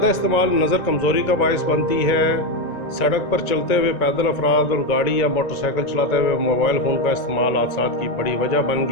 استعمال نظر کمزوری کا باعث بنتی ہے. سڑک پر چلتے ہوئے پیدل افراد اور گاڑی یا موٹر سائیکل چلاتے ہوئے موبائل فون کا استعمال حادثات کی بڑی وجہ بن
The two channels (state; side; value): late; right; 1.9 ms